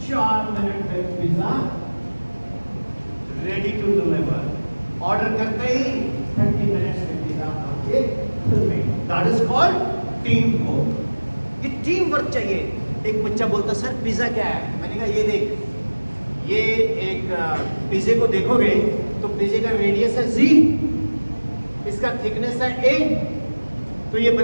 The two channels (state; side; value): inverted; both; correlation -1.00